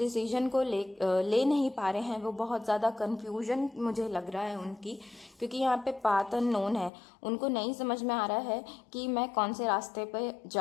को ले नहीं पा रहे हैं। वो बहुत ज़्यादा कन्फ्यूजन मुझे लग रहा है उनकी, क्योंकि यहाँ पे पाथ अननोन है। उनको नहीं समझ में आ रहा है कि मैं कौन से रास्ते पे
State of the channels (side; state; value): right; drops out; at 6.9 s